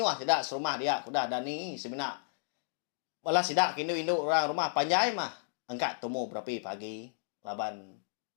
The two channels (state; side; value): silent; right; digital silence